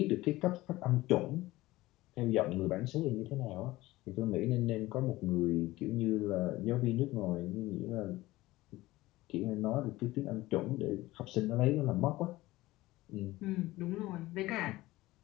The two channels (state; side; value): quieter; right; 18.2 dB